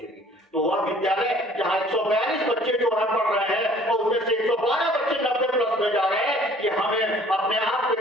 तो वह विद्यालय जहां 142 बच्चे जो है पढ़ रहे हैं और उनमें से 112 बच्चे 90+ में जा रहे हैं, ये हमें अपने आप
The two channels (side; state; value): both; normal; correlation 0.54